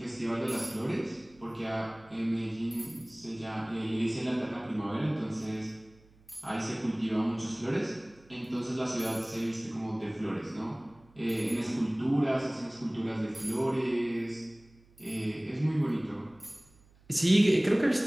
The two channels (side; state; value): right; noise; hum, 28 dB below the sound